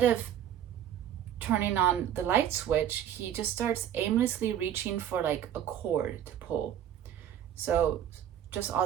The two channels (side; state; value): left; quieter; 10.3 dB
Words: of turning on the light switch, he just starts aimlessly reaching for like a cord to pull. So just